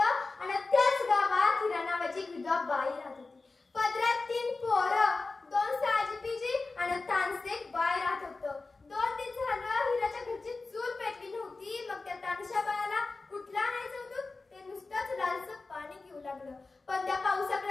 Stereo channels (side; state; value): right; quieter; 3.7 dB